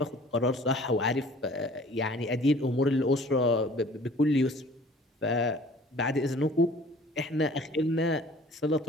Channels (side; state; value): both; normal; correlation 0.50